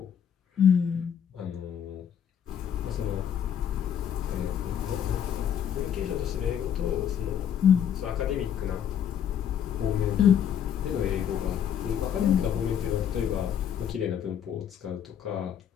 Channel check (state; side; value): quieter; right; 8.9 dB